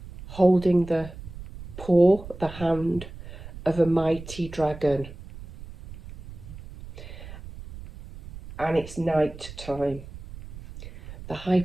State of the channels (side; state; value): right; noise; rumble, 14 dB below the sound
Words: holding the paw, the hand of a mighty dragon. And it's night time. The